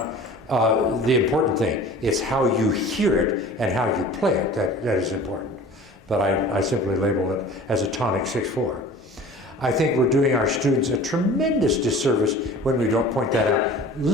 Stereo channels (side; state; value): both; normal; correlation 0.42